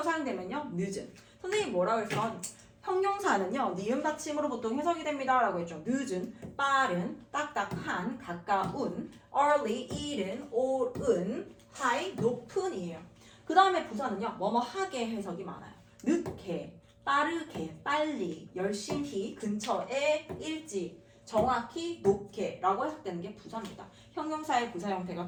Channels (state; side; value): identical; both; correlation 1.00